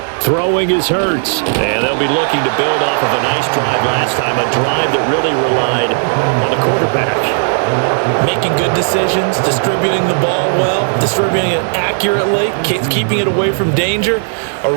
Throwing is Hurts. And they'll be looking to build off of a nice drive last time, a drive that really relied on the quarterback. Making good decisions, distributing the ball well, distributing it accurately, keeping it away from danger. A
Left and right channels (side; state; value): left; silent; digital silence